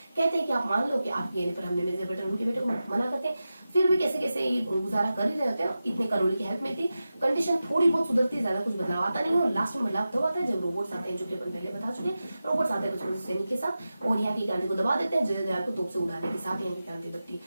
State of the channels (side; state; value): both; inverted; correlation -0.93